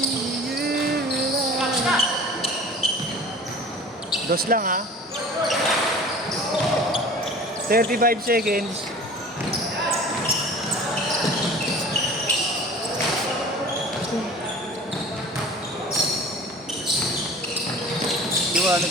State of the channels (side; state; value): both; normal; correlation 0.42